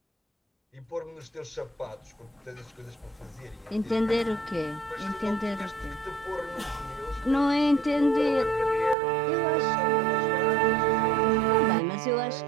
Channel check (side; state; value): left; drops out; at 9.0 s